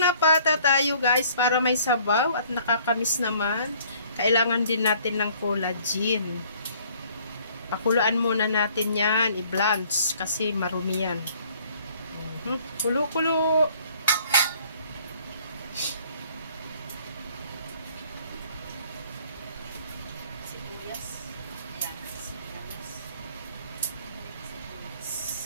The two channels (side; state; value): both; inverted; correlation -0.58